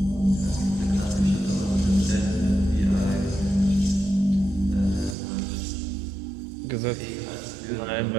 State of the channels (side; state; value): left; drops out; at 5.2 s